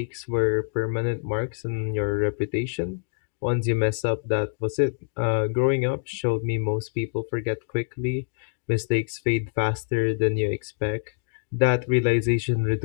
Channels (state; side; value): silent; right; digital silence